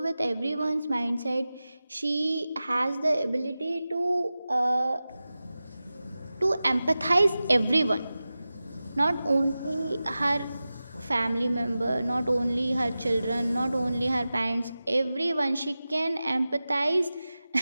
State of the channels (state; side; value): inverted; both; correlation -0.95